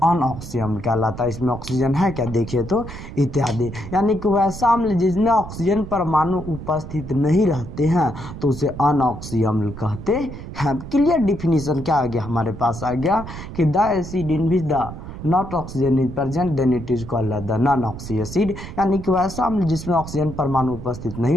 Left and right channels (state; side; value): noise; right; rumble, 11 dB below the sound